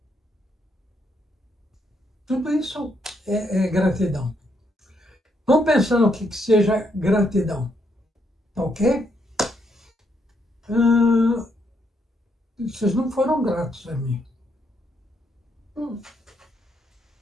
Tudo isso é gratidão. Vamos pensar no que seja gratidão. Tá ok? Vocês não foram gratos a mim.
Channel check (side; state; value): both; normal; correlation 0.76